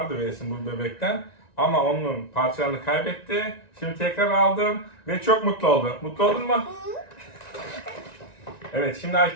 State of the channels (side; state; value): right; late; 1.9 ms